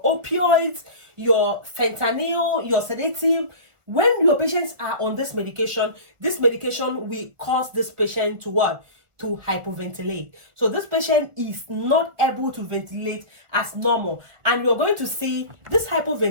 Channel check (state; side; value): late; left; 1.5 ms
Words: opioids, your fentanyl, your sedative. When your patients are on this medication will cause this patient to what? To hypoventilate. So this patient is not able to ventilate as normal, and you're going to see this